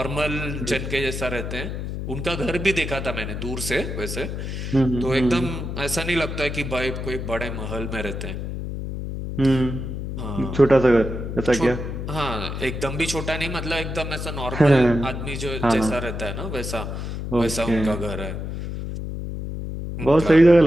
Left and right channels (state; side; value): noise; left; hum, 5 dB below the sound